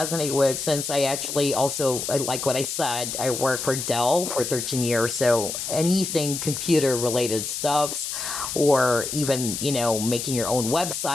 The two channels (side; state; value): left; noise; hiss, 4 dB below the sound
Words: with, since I actually also, like what I said, I worked for Dell for 13 years. So anything computer related stuffs, or even making your own